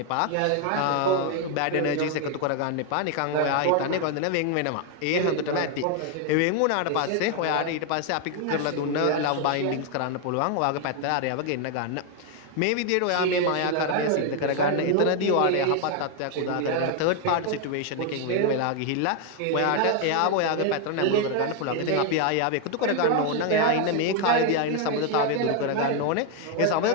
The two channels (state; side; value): different; both; correlation 0.01